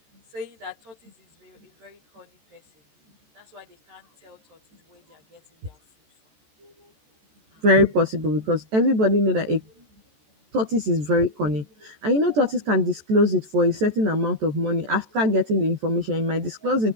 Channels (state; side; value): late; left; 14 ms